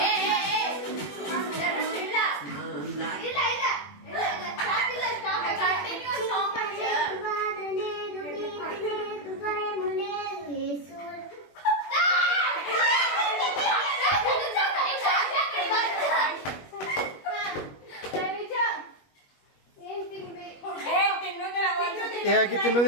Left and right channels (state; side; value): late; right; 21 ms